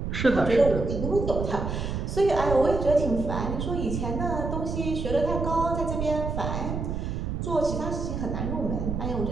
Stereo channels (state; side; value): noise; right; rumble, 3 dB below the sound